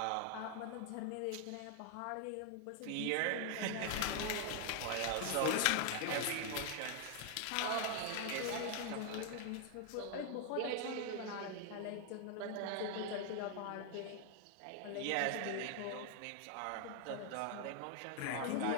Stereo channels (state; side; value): different; both; correlation 0.00